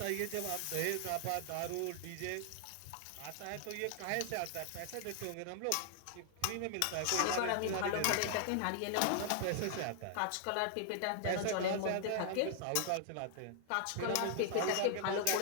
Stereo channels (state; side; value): different; both; correlation 0.00